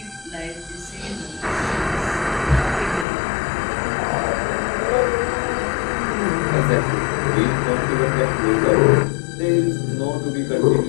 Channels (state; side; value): drops out; right; at 3.1 s